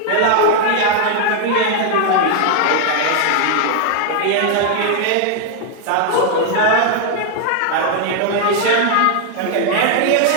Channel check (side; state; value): both; different; correlation 0.00